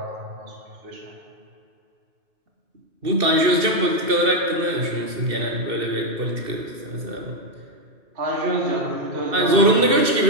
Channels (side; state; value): left; late; 2.6 ms